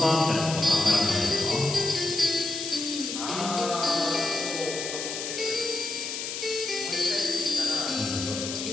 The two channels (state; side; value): noise; left; hiss, 5 dB below the sound